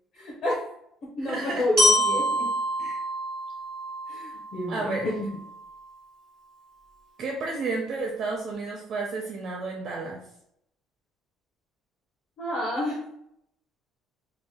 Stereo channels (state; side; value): normal; both; correlation 0.66